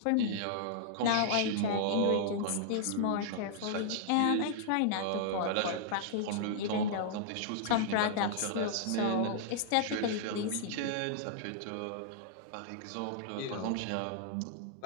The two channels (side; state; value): both; different; correlation -0.01